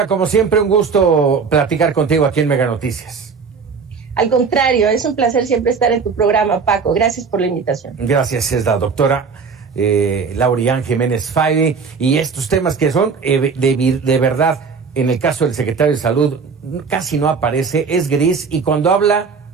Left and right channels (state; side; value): quieter; left; 5.4 dB